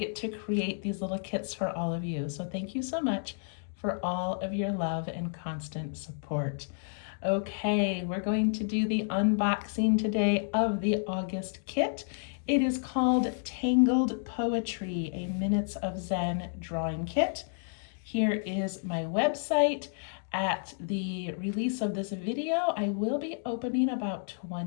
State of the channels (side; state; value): right; silent; digital silence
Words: to create these little kits for all of you. So thank you so much for all of your love and constant support. Okay, we're going to do the unboxing today of the August kit. It is called Tangled Poetry, a Minutes of Zen drawing kit. Here is my website. At the release of this video, I will be opening about